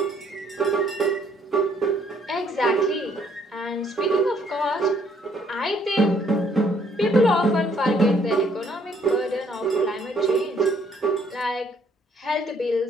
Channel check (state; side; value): normal; both; correlation 0.65